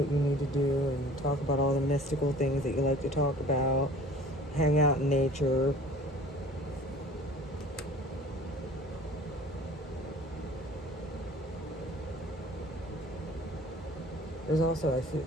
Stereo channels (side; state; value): both; normal; correlation 0.46